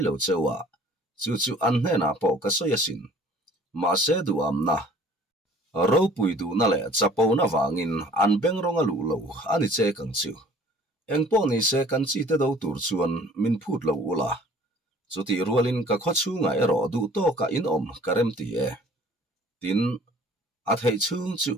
lo chewa chu an hne na po ka soya sin ma se du am na ro pui du na le chapo na wangin an beng ronga lu lo ani che kang chu eng po ni se kan chi te do tur chuan min phut lo ula chuti rualin ka kho chu ngai ro du to ka in om karem ti e tin a thei chung chu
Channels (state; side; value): normal; both; correlation 0.52